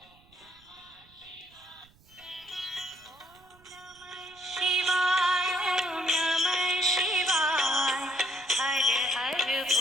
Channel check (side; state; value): right; noise; rumble, 28 dB below the sound